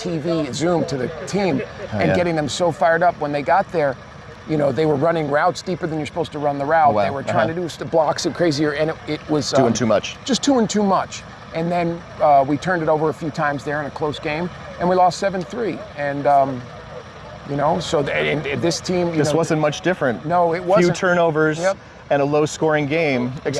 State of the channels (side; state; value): both; identical; correlation 1.00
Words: Zoom, to the team and getting them so fired up when they got there. You know, they were running routes deeper than you're supposed to run the route. Wow. They were trying to do blocks and crazier, and it was doing too much. Just doing too much. And then we turned it over a few times there in a close game, and we lost 7-3. And you know, so this team. This wasn't much different. No, it wasn't. Few turnovers and a low-scoring game.